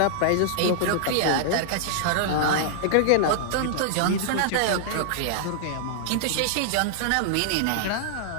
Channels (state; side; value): different; both; correlation -0.01